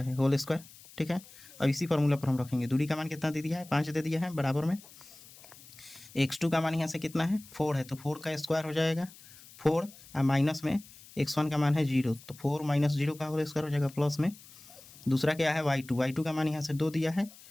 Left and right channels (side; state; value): left; noise; hiss, 21 dB below the sound